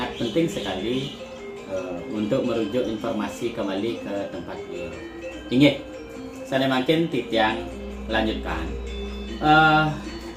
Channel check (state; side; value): identical; both; correlation 1.00